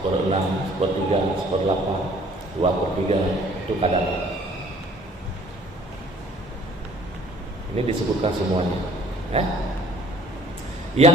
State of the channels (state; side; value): normal; both; correlation 0.56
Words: 1/3, 1/8, 2/3, itu kadarnya. Ini disebutkan semuanya. Yang